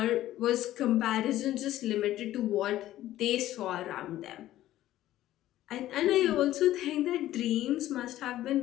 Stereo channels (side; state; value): right; quieter; 14.1 dB